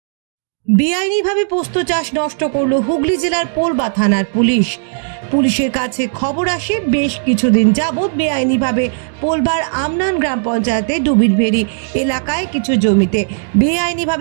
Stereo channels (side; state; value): left; silent; digital silence